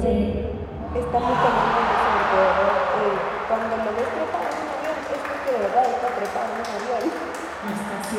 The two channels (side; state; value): both; identical; correlation 1.00